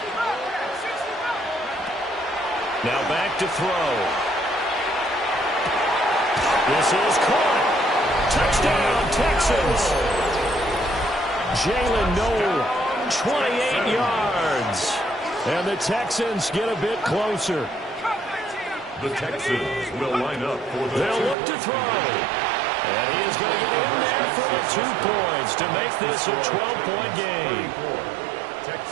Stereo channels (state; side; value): drops out; left; at 21.4 s